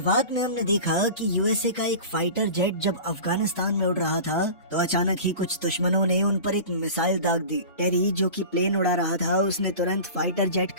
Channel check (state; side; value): inverted; both; correlation -0.35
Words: में हमने देखा कि यूएसए का एक फाइटर जेट जब अफगानिस्तान में उड़ रहा था तो अचानक ही कुछ दुश्मनों ने उन पर एक मिसाइल दाग दी। टेरी जो कि प्लेन उड़ा रहा था उसने तुरंत फाइटर जेट